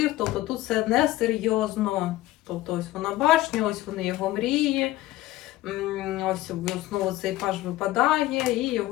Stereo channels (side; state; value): right; quieter; 16.6 dB